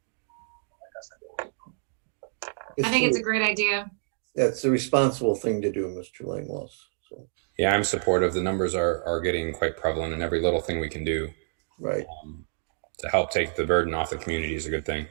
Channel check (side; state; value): left; silent; 60 dB below the other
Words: I think it's a great idea. That's the responsible thing to do, Mr. Langlois. So, Yeah, I'm supportive. The numbers are getting quite prevalent, and every little thing we can do right. To help take the burden off the community is a good thing.